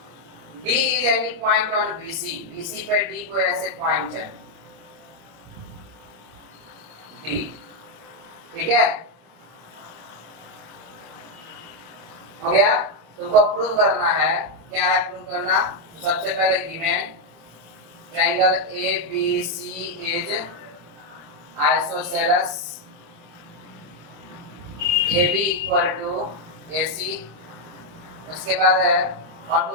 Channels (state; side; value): late; left; 25 ms